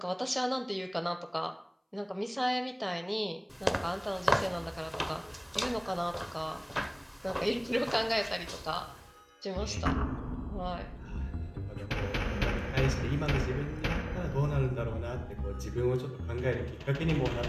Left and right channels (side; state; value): both; identical; correlation 1.00